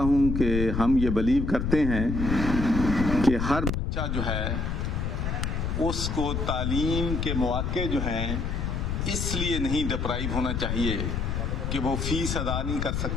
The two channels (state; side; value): noise; left; rumble, 1 dB below the sound